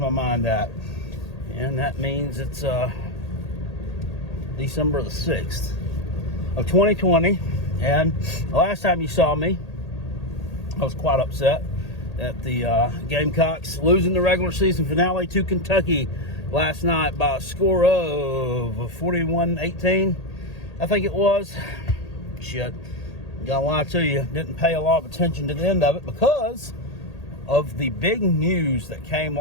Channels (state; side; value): late; right; 1.8 ms